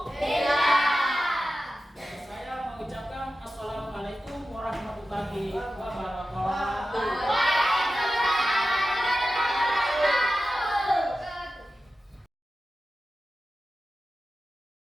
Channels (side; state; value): both; normal; correlation 0.93